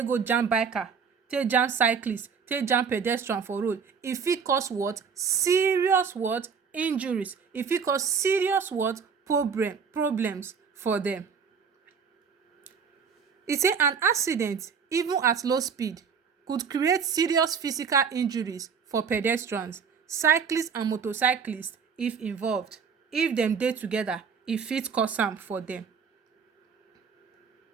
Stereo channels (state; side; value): quieter; left; 6.3 dB